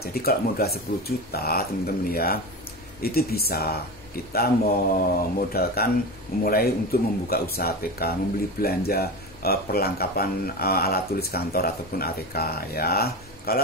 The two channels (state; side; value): normal; both; correlation 0.24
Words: kalau modal 10 juta teman-teman ya, itu bisa kita memodalkan memulai untuk membuka usaha ATK, membeli belanja perlengkapan alat tulis kantor ataupun ATK ya.